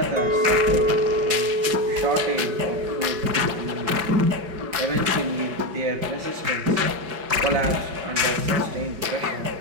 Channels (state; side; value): late; left; 5.2 ms